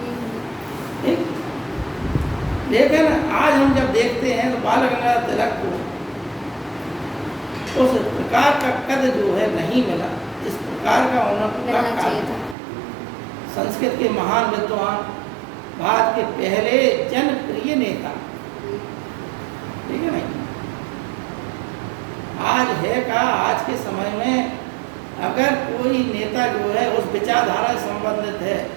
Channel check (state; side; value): drops out; left; at 12.6 s